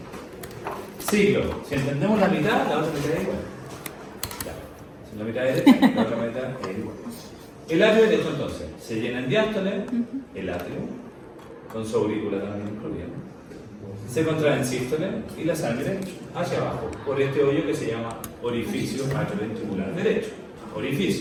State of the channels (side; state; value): both; identical; correlation 1.00